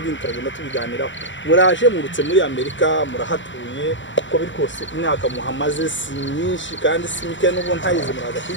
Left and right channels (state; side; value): late; right; 0.54 ms